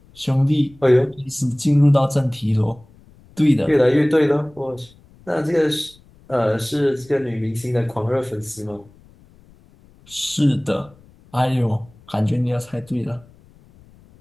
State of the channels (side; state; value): left; noise; rumble, 27 dB below the sound